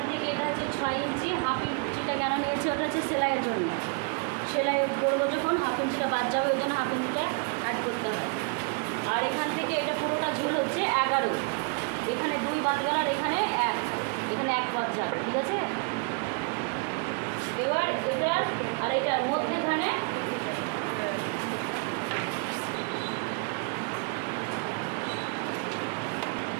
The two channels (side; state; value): left; quieter; 35.2 dB